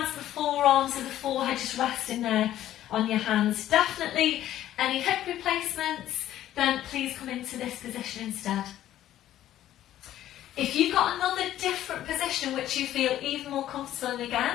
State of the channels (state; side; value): quieter; right; 12.7 dB